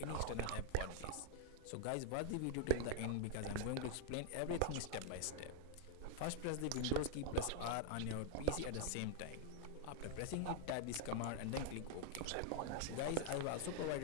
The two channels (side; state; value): both; different; correlation -0.01